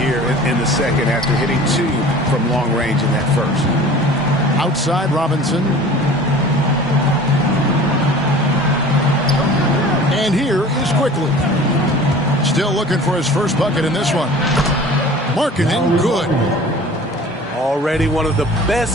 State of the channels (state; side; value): normal; both; correlation 0.43